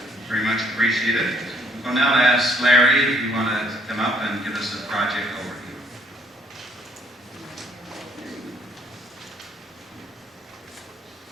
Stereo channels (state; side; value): normal; both; correlation 0.66